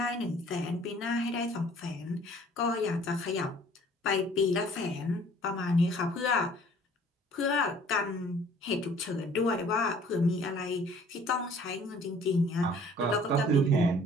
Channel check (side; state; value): both; normal; correlation 0.54